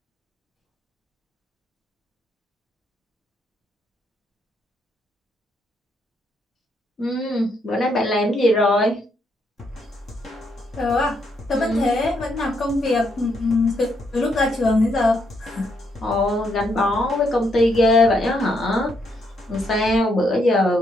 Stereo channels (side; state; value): both; normal; correlation 0.75